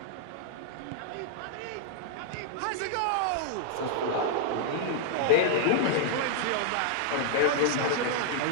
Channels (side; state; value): both; different; correlation -0.01